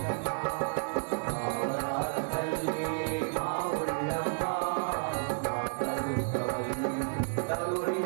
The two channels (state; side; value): silent; left; digital silence